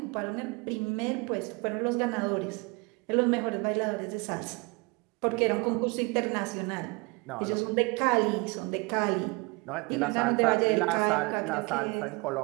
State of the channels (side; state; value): left; quieter; 28.1 dB